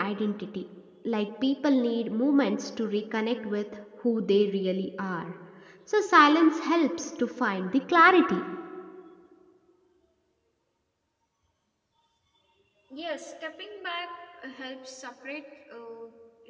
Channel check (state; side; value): identical; both; correlation 1.00